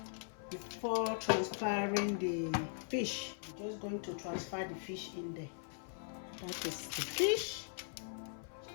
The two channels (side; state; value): right; silent; 51 dB below the other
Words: before transferring the fish. I'm just going to transfer the fish in there. That is the fish.